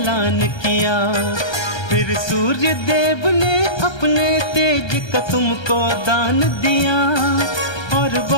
किया। फिर सूर्य देव ने अपने तेज का तुमको दान दिया, और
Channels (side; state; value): right; late; 1.3 ms